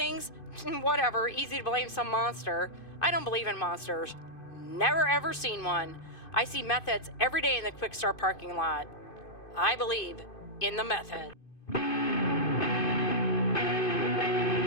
Whatever, easy to blame some monster. I don't believe in monsters. Never ever seen one. I see meth heads every day in the Quick Start parking lot. I believe in the meth head.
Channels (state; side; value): late; right; 2.5 ms